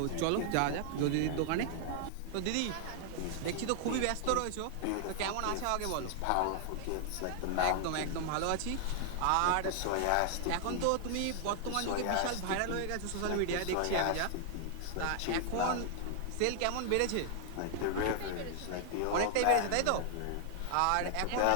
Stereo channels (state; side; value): different; both; correlation 0.00